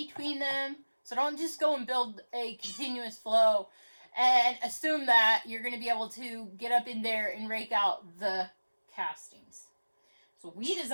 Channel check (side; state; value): both; inverted; correlation -1.00